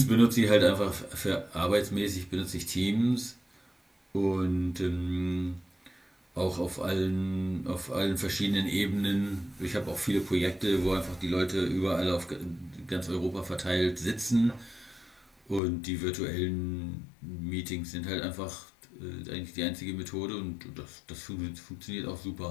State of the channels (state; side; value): drops out; right; at 15.6 s